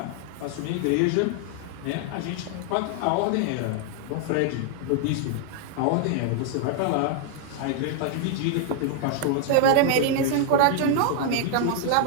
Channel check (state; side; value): different; both; correlation 0.00